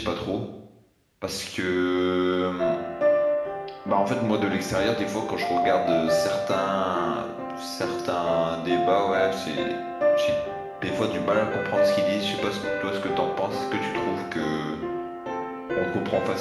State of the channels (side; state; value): both; identical; correlation 1.00